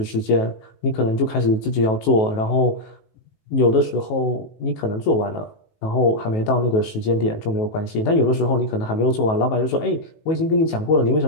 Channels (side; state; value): right; late; 18 ms